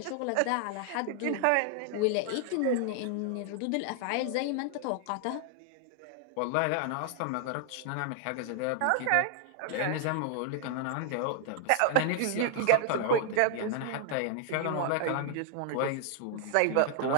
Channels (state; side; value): different; both; correlation 0.00